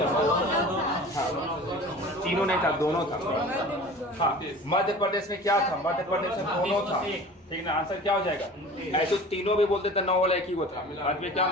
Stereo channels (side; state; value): both; normal; correlation 0.40